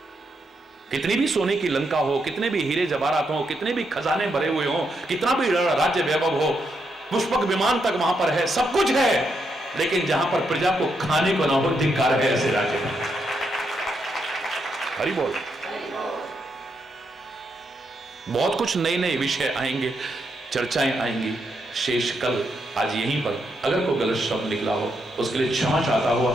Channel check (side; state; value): both; normal; correlation 0.80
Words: कितनी भी सोने की लंका हो, कितने भी हीरे जवाहरात हो, कितने भी खजाने भरे हुए हो, कितना भी राज्य वैभव हो, पुष्पक विमान तक वहां पर है, सब कुछ है, लेकिन जहां पर प्रजा को खाने को ना हो, धिक्कार है ऐसे राज्य में। हरि बोल। बहुत कुछ नए नए विषय आएंगे, चर्चाएं आएंगी। शेष कल आज यहीं पर अगर कोई गलत शब्द निकला हो उसके लिए क्षमा चाहता हुआ